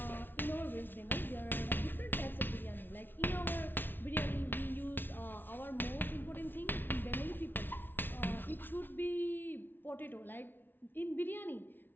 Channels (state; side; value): late; right; 0.096 ms